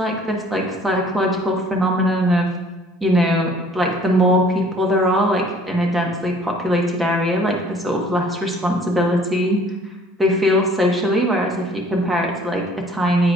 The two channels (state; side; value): normal; both; correlation 0.55